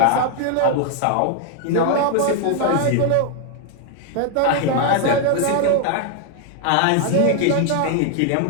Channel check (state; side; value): different; both; correlation 0.00